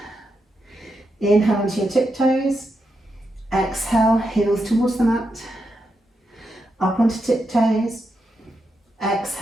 Inhale onto your tiptoes. Exhale, heels towards the mat. Up onto tiptoes.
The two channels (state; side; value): normal; both; correlation 0.85